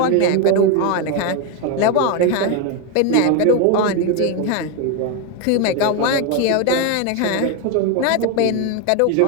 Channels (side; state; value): both; different; correlation 0.02